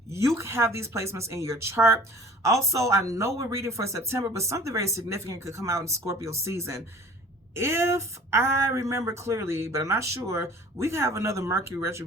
You have these placements in your chart. Also, I know we're reading for September, but something very significant could come out in Scorpio season. If I remember clearly, but I'm not sure, we have another Mercury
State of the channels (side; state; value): both; normal; correlation 0.47